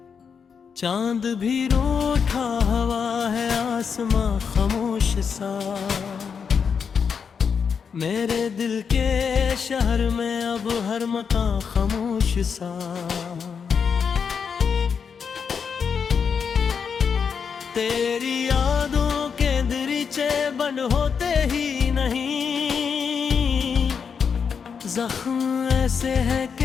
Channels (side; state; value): right; quieter; 6.4 dB